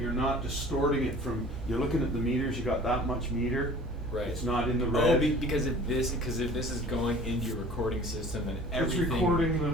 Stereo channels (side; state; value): both; normal; correlation 0.45